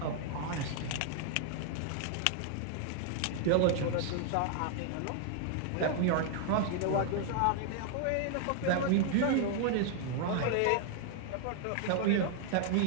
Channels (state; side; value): different; both; correlation 0.00